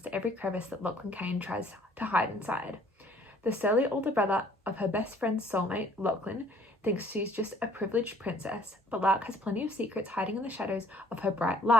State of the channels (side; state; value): both; normal; correlation 0.58